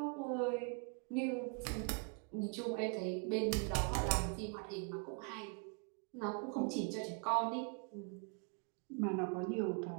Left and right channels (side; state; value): left; quieter; 35.8 dB